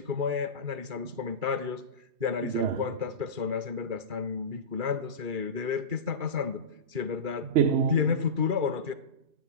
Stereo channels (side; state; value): left; late; 2.4 ms